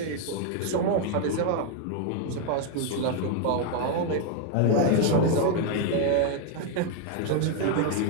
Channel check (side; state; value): both; different; correlation 0.00